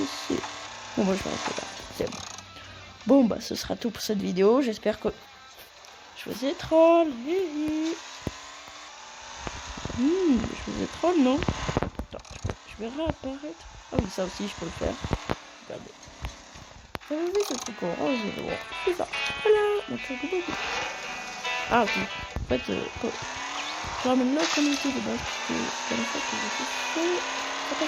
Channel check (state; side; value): identical; both; correlation 1.00